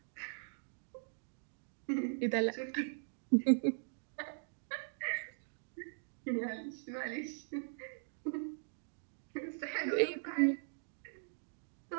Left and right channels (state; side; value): silent; left; digital silence